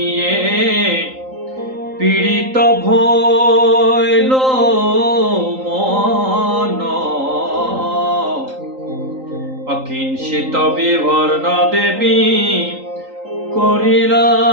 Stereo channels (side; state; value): left; late; 3.8 ms